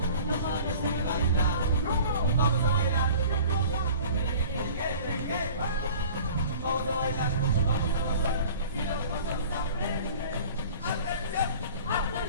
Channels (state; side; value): inverted; both; correlation -0.45